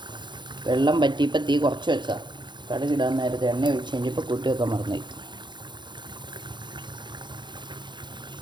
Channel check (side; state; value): left; late; 0.22 ms